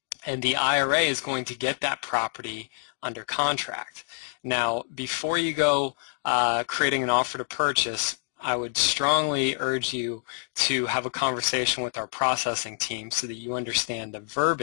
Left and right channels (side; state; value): right; silent; digital silence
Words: And the IRA is going to get that property under contract. Now, before you go creating an offer to purchase, I would strongly urge you to have a conversation with our processing team so that you understand the